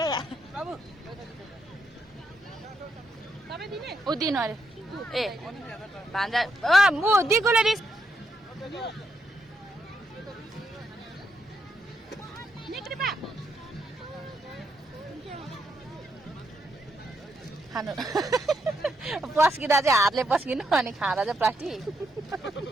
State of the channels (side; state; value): both; normal; correlation 0.79